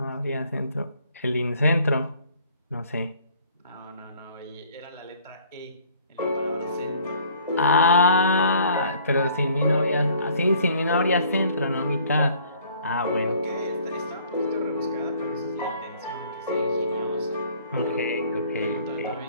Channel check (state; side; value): inverted; both; correlation -0.57